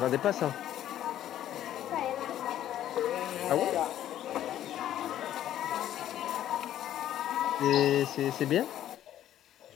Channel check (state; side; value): quieter; right; 11.8 dB